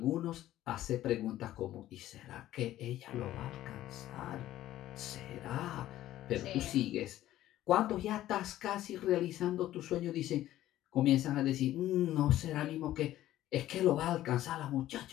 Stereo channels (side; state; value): right; quieter; 13.9 dB